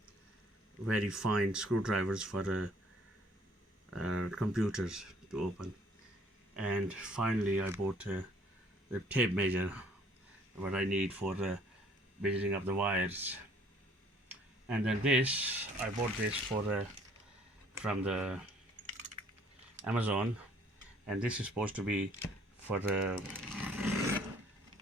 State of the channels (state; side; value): normal; both; correlation 0.59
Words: very fine screwdrivers for computers to open. And finally I bought the tape measure, what I need for measuring up the wires. And then this, I bought this from the Amazon, and this is supposed to be for the